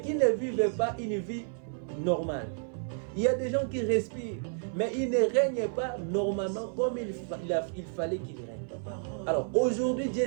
ne vivent pas une vie normale. Il y a des gens qui respirent, mais ils ne règnent pas normalement comme il fallait qu'ils règnent. Alors aujourd'hui,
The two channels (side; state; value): left; silent; 57 dB below the other